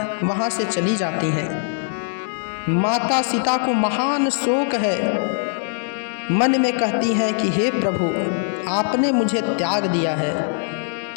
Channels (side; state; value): right; silent; 60 dB below the other